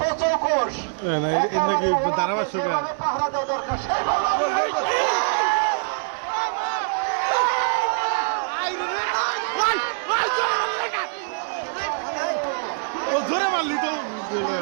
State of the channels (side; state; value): left; silent; 59 dB below the other